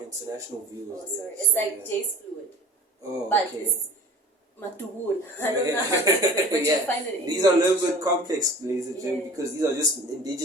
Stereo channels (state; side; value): normal; both; correlation 0.42